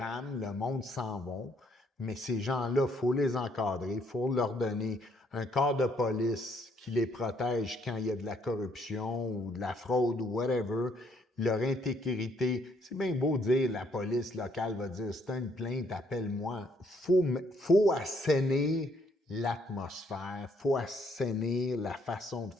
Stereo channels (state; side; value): normal; both; correlation 0.69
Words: le monde s'en va. Mais ces gens-là, il faut les encadrer, il faut leur donner un corps de police qui les protège quand il y a de la corruption ou de la fraude ou whatever. Leur intégrité, c'est bien beau dire la police locale va dire c'est une plainte, appelle-moi. Faut assainir l'atmosphère, faut assainir la façon de